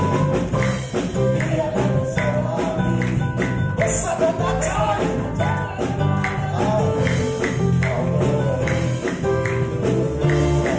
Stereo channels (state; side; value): identical; both; correlation 1.00